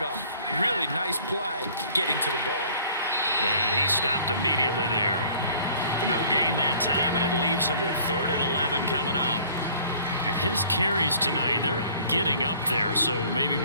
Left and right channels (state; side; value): inverted; both; correlation -0.53